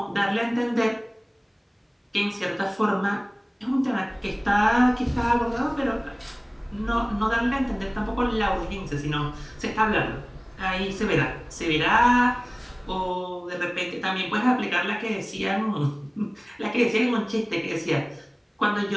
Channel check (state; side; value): identical; both; correlation 1.00